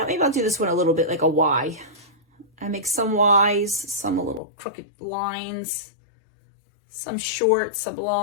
maybe I'll do this one a little bit like a Y. I make some Ys, some a little crooked lines, some short, some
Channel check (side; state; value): right; drops out; at 4.4 s